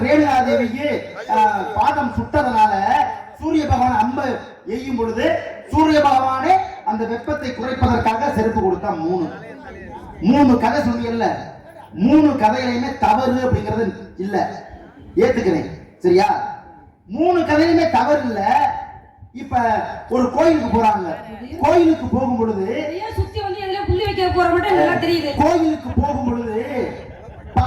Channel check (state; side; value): identical; both; correlation 1.00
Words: ரேணுகாதேவிக்கு பாதம் சுட்டதனால சூரிய பகவான் அம்பு எய்யும் பொழுது சூரிய பகவானே அந்த வெப்பத்தை குறைப்பதற்காக செருப்பு கொடுத்தா. மூணு கதை சொன்னீங்கல்ல, 3 கதைகளையுமே தவறு அப்படிங்கிறது இல்ல, ஏத்துக்கிறேன். சரியா? 3 கதையுமே தவறு இல்ல. இப்ப ஒரு கோயிலுக்கு போறாங்க, கோயிலுக்கு போகும் பொழுது சுத்தி வந்து எதுல புள்ளி வைக்க போற மட்டும் நல்லா தெரியுது. கோயிலுக்கு போகும் பொழுது